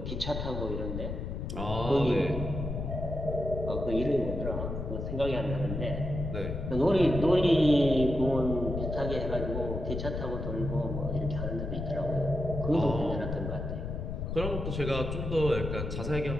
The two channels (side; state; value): left; noise; rumble, 4 dB below the sound